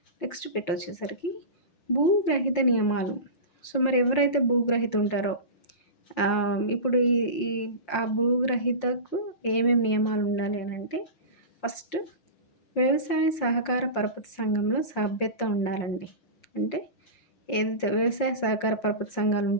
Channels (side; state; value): right; late; 5.6 ms